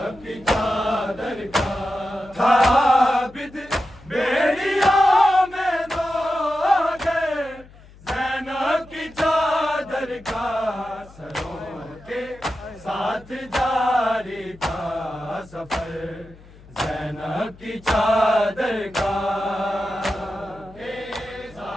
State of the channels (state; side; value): noise; left; hum, 23 dB below the sound